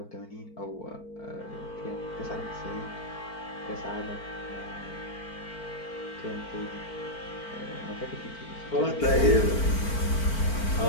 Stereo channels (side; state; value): right; late; 4.4 ms